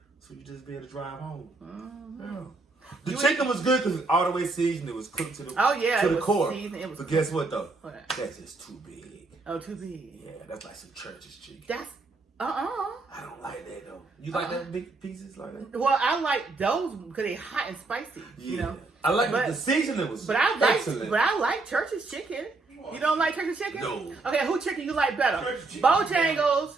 so you just be able to drive home. Mm-hmm. The chicken was good because all the way seasoned. It was cooked to the it the was core. seasoned, it was But guess what though? What? That's just too big. Oh, too big. Yeah, that's like some church's chicken. That's I don't like that though. You like that big pieces like that? Well, I like those because they're hot and spicy. Yeah. You know. I like But- the seasoning was But I like, excellent. Church's chicken. You don't like Church's chicken? No. Okay, who chicken you like better? Church's chicken.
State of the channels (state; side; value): quieter; left; 3.6 dB